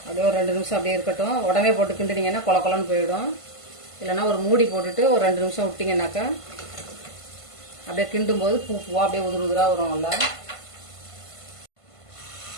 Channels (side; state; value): right; late; 1.5 ms